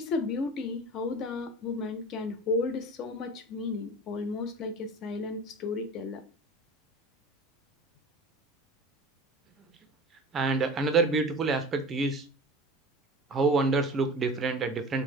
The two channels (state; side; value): normal; both; correlation 0.37